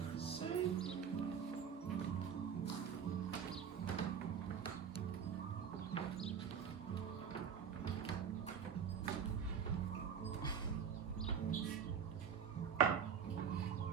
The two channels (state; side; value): quieter; left; 7.5 dB